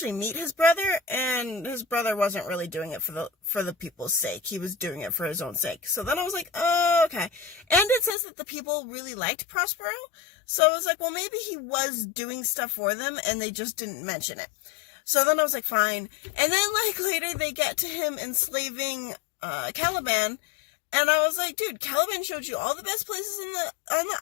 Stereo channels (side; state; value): right; drops out; at 8.1 s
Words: meet his brother, and his brother wasn't really doing it for the people's sake. He was doing it for his own sake. So then I was like, oh, okay. And it says that the people really liked Prospero. So I was like, well, maybe he was doing stuff for them, and they just didn't mention it. So then I was like, fine. And then, later they get to him enslaving Caliban, and I was like, dude, Caliban showed you all the best places on the